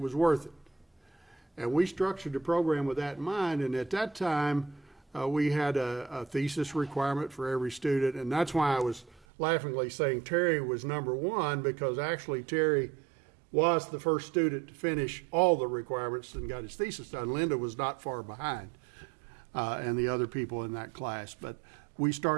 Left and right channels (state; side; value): drops out; left; at 9.2 s